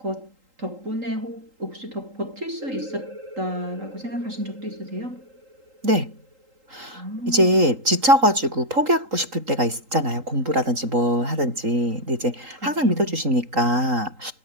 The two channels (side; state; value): left; late; 3.8 ms